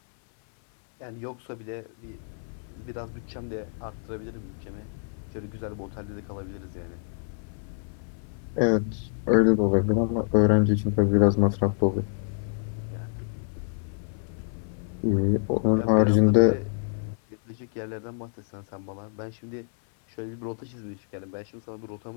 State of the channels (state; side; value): silent; right; 60 dB below the other